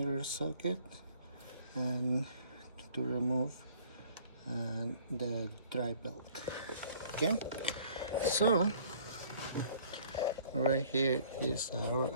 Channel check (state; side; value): inverted; both; correlation -0.56